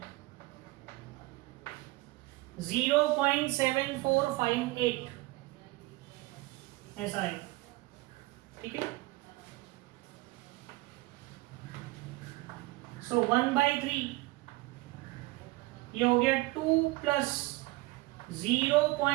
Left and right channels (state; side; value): quieter; left; 20.9 dB